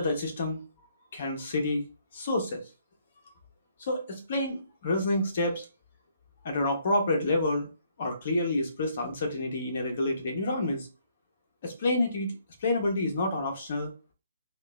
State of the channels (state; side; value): inverted; both; correlation -0.69